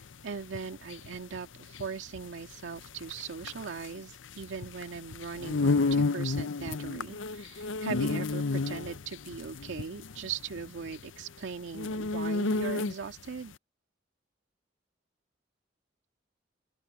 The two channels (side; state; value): both; normal; correlation 0.24